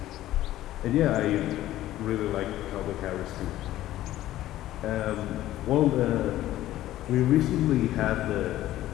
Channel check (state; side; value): quieter; right; 14.3 dB